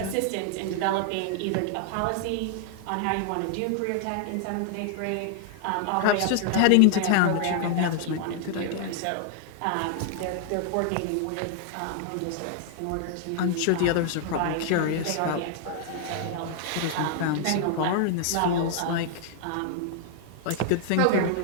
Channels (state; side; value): different; both; correlation 0.00